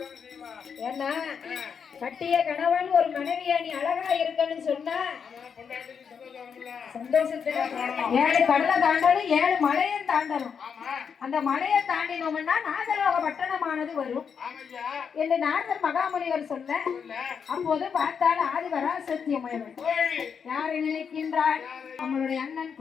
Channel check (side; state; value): right; quieter; 6.7 dB